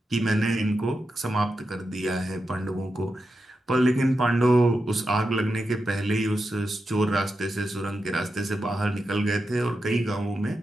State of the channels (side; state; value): both; normal; correlation 0.88